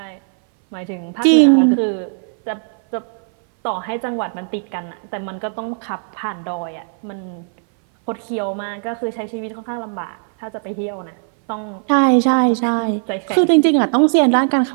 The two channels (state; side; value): silent; left; 60 dB below the other